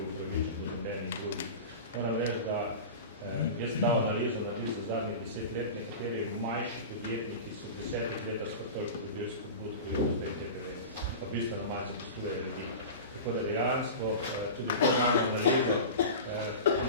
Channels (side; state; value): both; inverted; correlation -0.30